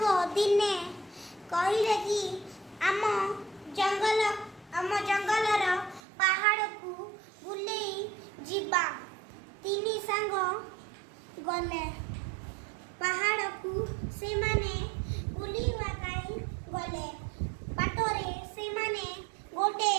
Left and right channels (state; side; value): drops out; left; at 6.0 s